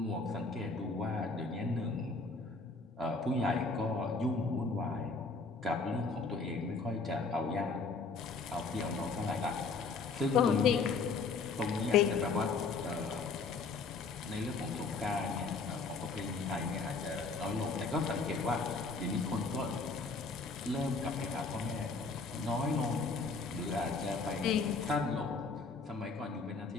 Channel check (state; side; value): quieter; right; 4.2 dB